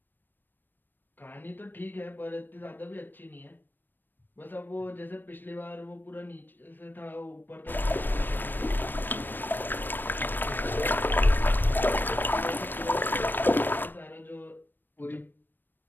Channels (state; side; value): late; right; 0.093 ms